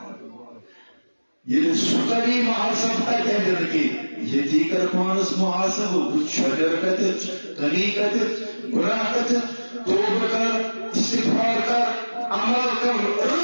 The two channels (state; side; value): inverted; both; correlation -1.00